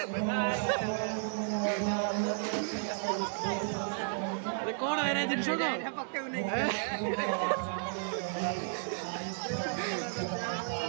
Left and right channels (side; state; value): left; silent; digital silence